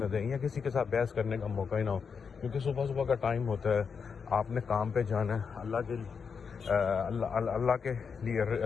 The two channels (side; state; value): right; quieter; 6.0 dB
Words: دیں یا کسی کے ساتھ بحث کرنے کا موقع ہی نہ ہو. کیونکہ صبح کا ٹائم ہوتا ہے، آپ نے کام پہ جانا ہے. اللہ